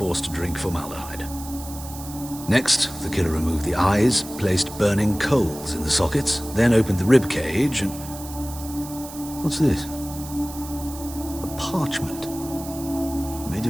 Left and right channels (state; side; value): noise; right; hiss, 14 dB below the sound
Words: to drink formaldehyde. Next, the killer removed the eyes, placed burning coals in the sockets, then opened the rib cage and... What's this? A parchment. Made